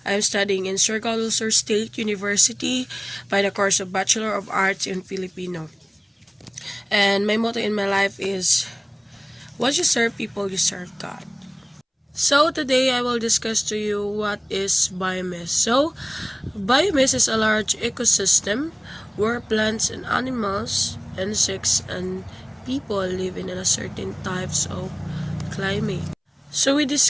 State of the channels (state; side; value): identical; both; correlation 1.00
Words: I am studying in Surigao del Sur State University by the course of Bachelor of Arts in Filipino. And my motto in my life is, once you serve people, you serve God. So today I will discuss to you what is biomass. Biomass is a large ecosystem where plants and animals, insects, and people live in a certain types of climate. So we